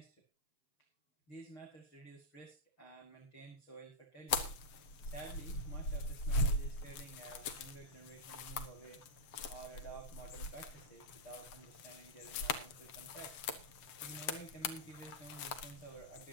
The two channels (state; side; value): late; right; 7.5 ms